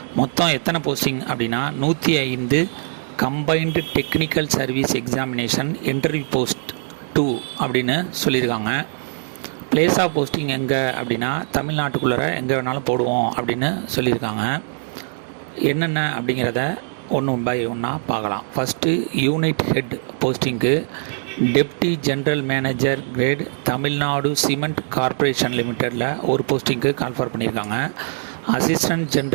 மொத்தம் எத்தனை போஸ்டிங் அப்படின்னா 105 combined technical service examination interview post 2 அப்படின்னு சொல்லியிருக்காங்க. பிளேஸ் ஆஃப் போஸ்டிங் எங்கே அப்படின்னா தமிழ்நாட்டுக்குள்ளே எங்கே வேணாலும் போடுவோம் அப்படின்னு சொல்லியிருக்காங்க. என்னென்ன அப்படிங்கிறத ஒன்று பை ஒன்றா பார்க்கலாம். ஃபஸ்ட்டு யூனிட் ஹெட் போஸ்டிங்கு deputy general manager grade Tamil Nadu cement corporation லிமிட்டடில் ஒரு போஸ்டிங்க்கு கால்ஃபர் பண்ணியிருக்காங்க. Assistant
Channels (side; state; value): left; silent; digital silence